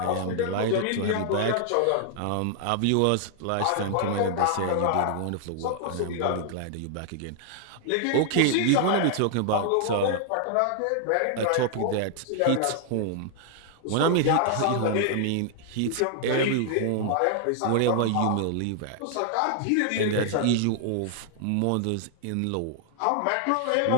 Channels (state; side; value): different; both; correlation 0.00